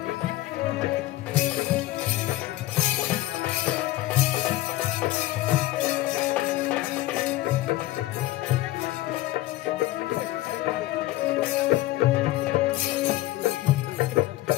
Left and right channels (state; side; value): quieter; right; 16.7 dB